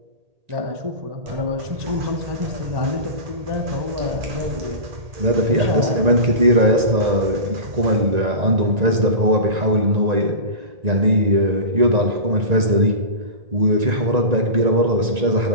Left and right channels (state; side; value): late; left; 1.9 ms